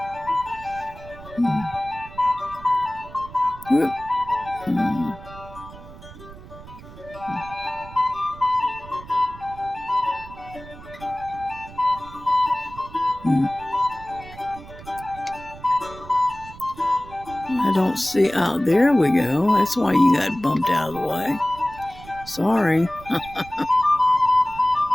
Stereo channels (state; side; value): noise; right; rumble, 17 dB below the sound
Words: Whoop. I don't see. Oh, there we go. That's why you got bumped out of the way. Sorry.